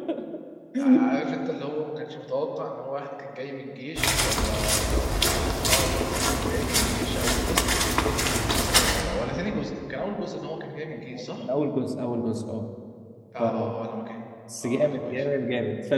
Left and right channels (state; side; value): identical; both; correlation 1.00